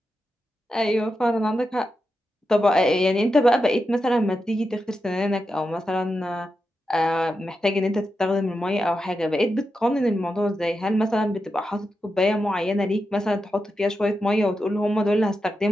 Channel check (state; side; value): normal; both; correlation 0.88